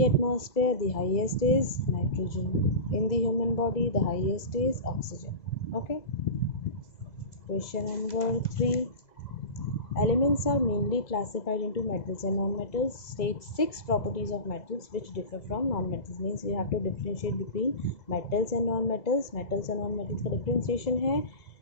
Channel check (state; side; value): late; right; 2.0 ms